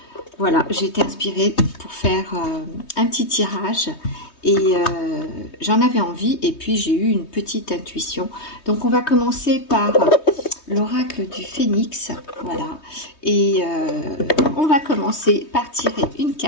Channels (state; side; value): late; right; 3.2 ms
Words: Voilà, j'ai été inspirée pour faire un petit tirage. Et j'en avais envie et puis j'ai eu une petite intuition. Donc on va commencer par l'oracle du phénix, voilà. Et on va commencer par tirer une